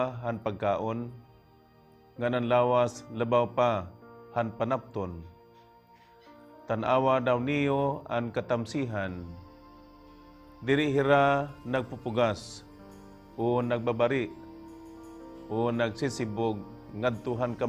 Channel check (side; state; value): both; identical; correlation 1.00